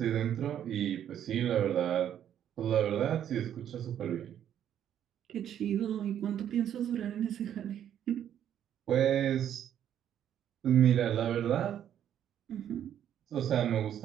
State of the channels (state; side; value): quieter; left; 10.1 dB